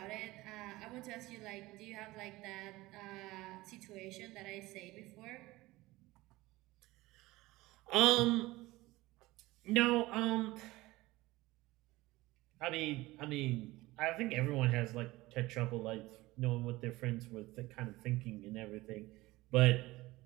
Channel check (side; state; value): left; quieter; 19.4 dB